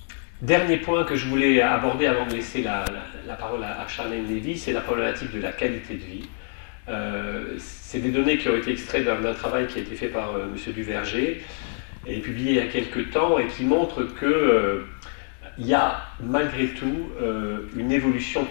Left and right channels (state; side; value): silent; right; 58 dB below the other